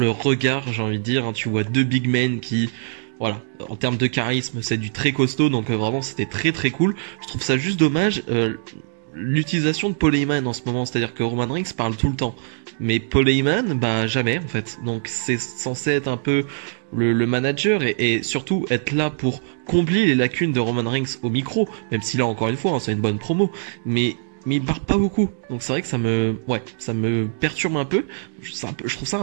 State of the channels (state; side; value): silent; left; digital silence